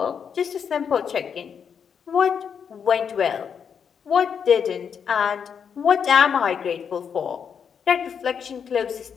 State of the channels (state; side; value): quieter; right; 7.1 dB